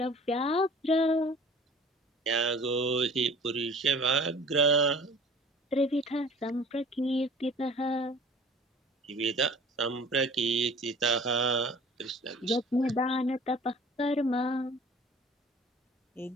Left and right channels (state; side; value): normal; both; correlation 0.47